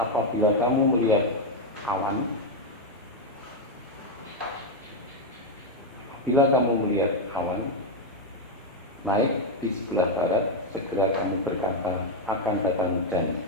kamu melihat awan, bila kamu melihat awan naik di sebelah barat, segera kamu berkata akan datang hujan,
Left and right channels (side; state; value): both; normal; correlation 0.03